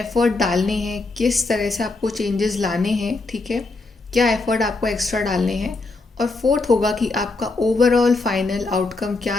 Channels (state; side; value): quieter; right; 3.5 dB